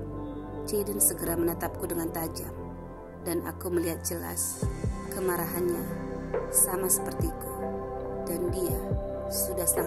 Jaden segera menatapku dengan tajam, dan aku melihat jelas kemarahannya sama sepertiku, dan dia sudah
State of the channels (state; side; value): identical; both; correlation 1.00